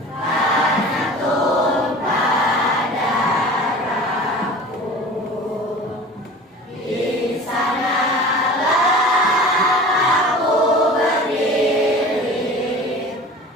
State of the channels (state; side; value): normal; both; correlation 0.39